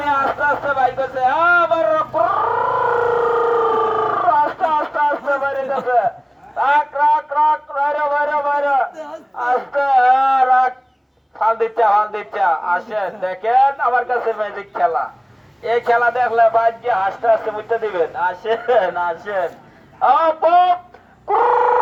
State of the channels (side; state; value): both; identical; correlation 1.00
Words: আস্তে আস্তে বাইক আছে, আবার আস্তে আস্তে আস্তে বাইরে যাবে। রাখ রাখ রাখ বাইরে বাইরে বাইরে আস্তে রাখ। ফাল দিচ্ছে আসেন, দেখেন আমার কাছে ম্যাজিক খেলা। এই খেলা দেখলে বাইক গিয়ে হাসতে হাসতে বুঝতে দিবেন। আসেন আসেন